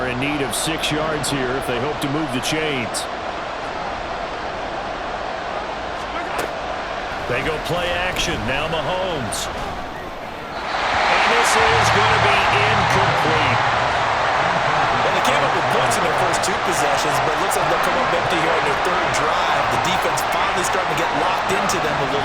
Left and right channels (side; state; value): both; identical; correlation 1.00